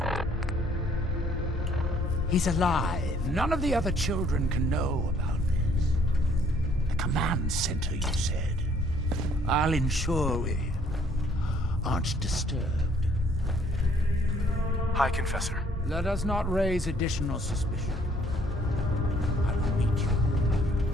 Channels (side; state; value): both; normal; correlation 0.62